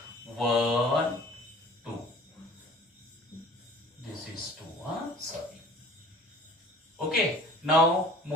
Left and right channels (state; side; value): normal; both; correlation 0.47